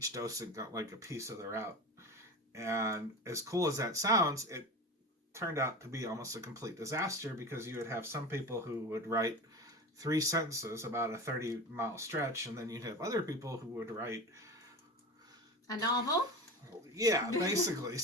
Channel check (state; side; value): normal; both; correlation 0.29